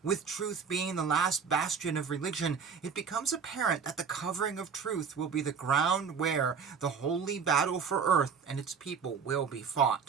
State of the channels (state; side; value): quieter; left; 6.4 dB